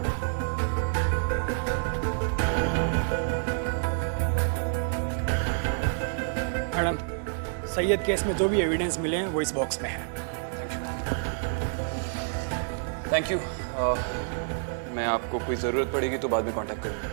मैडम, सैयद केस में जो भी एविडेंस मिले हैं वो इस बॉक्स में है। Thank you. मैं आपको कोई ज़रूरत पड़ेगी तो बाद में कांटेक्ट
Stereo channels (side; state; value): left; silent; digital silence